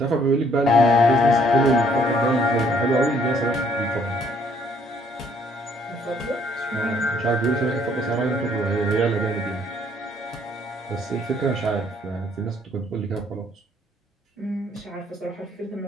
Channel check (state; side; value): normal; both; correlation 0.64